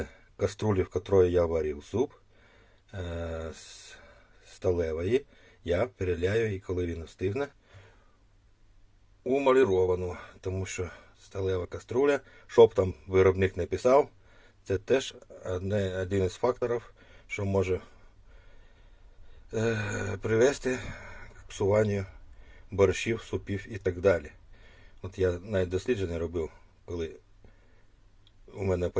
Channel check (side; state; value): both; identical; correlation 1.00